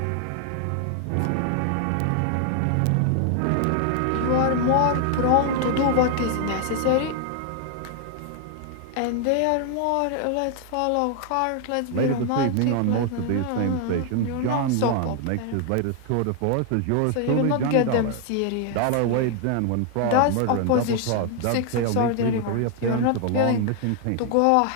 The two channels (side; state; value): both; different; correlation 0.00